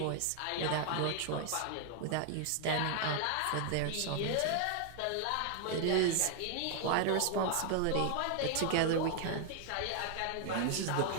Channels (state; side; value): different; both; correlation 0.00